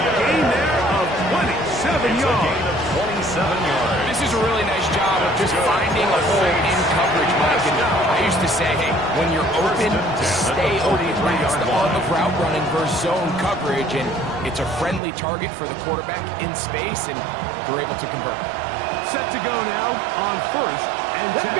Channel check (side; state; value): left; drops out; at 15.0 s